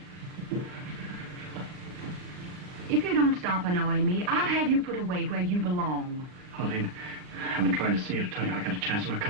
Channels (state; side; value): late; left; 39 ms